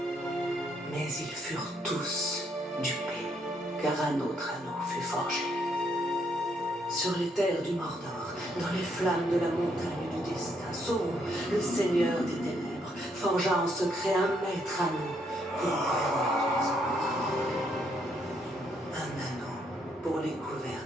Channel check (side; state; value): both; normal; correlation 0.73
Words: Mais ils furent tous dupés, car un autre anneau fut forgé. Sur les terres du Mordor, dans les flammes de la montagne du destin, Sauron, le seigneur des ténèbres, forgea en secret un maître anneau pour gouverner tous les autres. Un anneau pour les